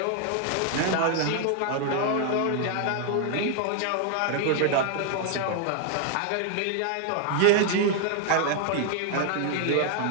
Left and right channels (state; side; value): different; both; correlation 0.00